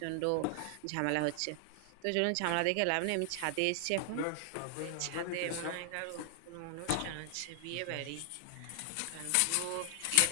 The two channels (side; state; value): both; different; correlation 0.00